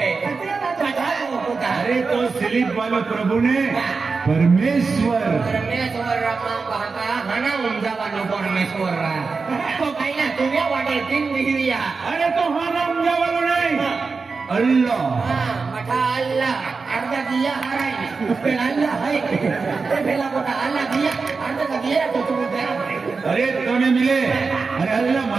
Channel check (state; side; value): quieter; left; 4.5 dB